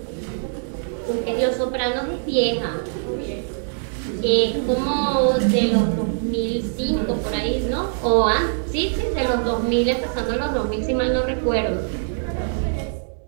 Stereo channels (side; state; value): left; silent; digital silence